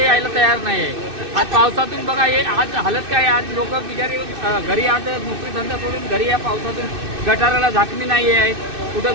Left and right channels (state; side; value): late; left; 2.6 ms